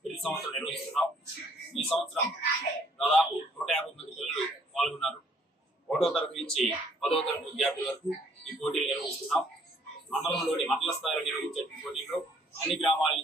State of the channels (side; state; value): both; normal; correlation 0.62